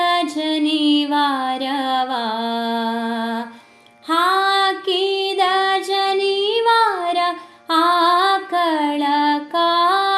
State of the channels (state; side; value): identical; both; correlation 1.00